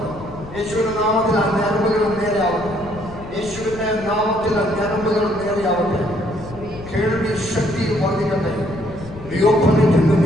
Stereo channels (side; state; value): left; noise; rumble, 15 dB below the sound